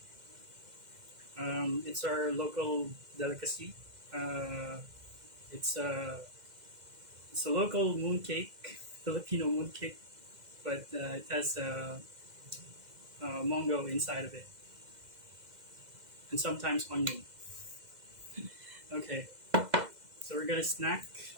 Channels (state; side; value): late; left; 2.0 ms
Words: It's our local delicacy. Uh, it's a it's a local mooncake, Filipino mooncake, but it has mango inside of it, and sometimes onion. Okay, so we're gonna snack.